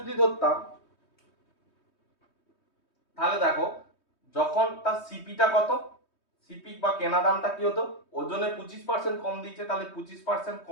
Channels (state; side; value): late; right; 3.2 ms